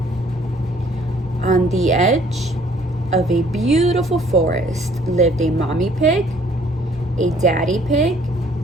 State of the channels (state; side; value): normal; both; correlation 0.60